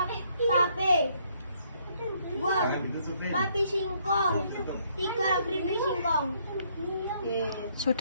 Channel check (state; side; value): inverted; both; correlation -0.69